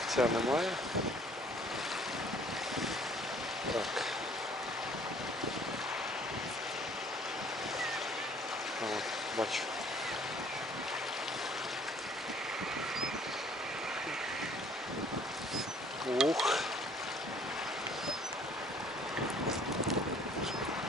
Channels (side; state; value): both; normal; correlation 0.57